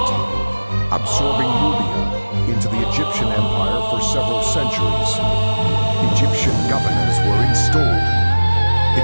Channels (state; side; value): inverted; both; correlation -1.00